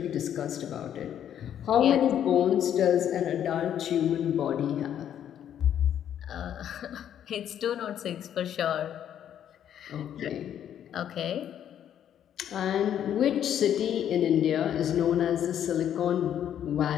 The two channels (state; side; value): quieter; right; 10.0 dB